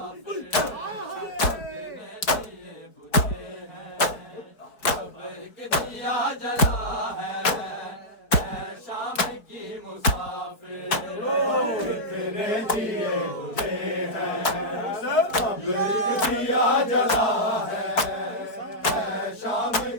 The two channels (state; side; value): late; right; 4.7 ms